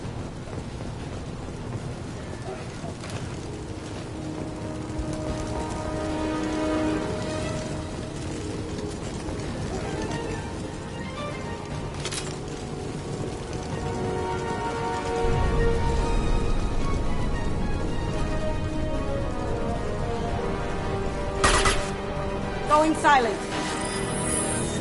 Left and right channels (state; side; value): identical; both; correlation 1.00